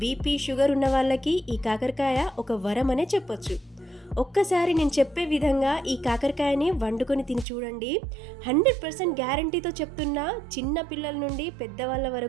బీపీ, షుగర్ ఉన్న వాళ్ళకి ఈ కాకరకాయ ఒక వరం అనే చెప్పొచ్చు. ఒక్కసారి నేను చెప్పే విధంగా ఈ కాకరకాయని వండుకొని తిని చూడండి. 100% గ్యారంటీతో చెప్తున్నా, చిన్న పిల్లల నుండి పెద్దవాళ్ళ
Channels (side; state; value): left; drops out; at 7.5 s